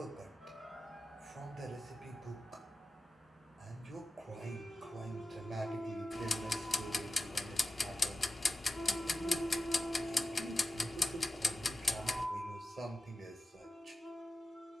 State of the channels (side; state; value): both; normal; correlation 0.92